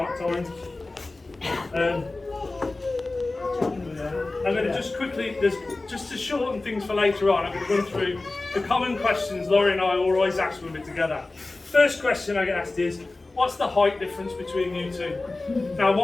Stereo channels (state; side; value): quieter; right; 3.2 dB